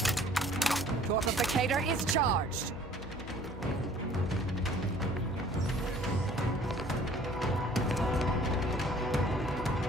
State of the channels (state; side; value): noise; left; hum, 13 dB below the sound